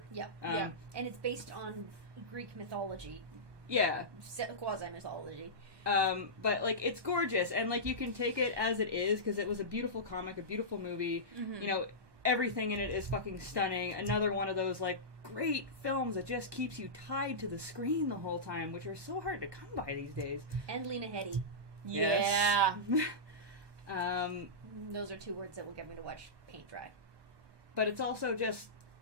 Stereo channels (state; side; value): late; left; 1.2 ms